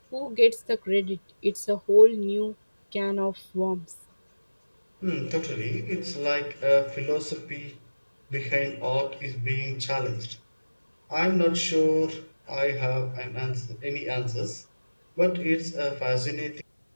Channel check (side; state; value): both; inverted; correlation -1.00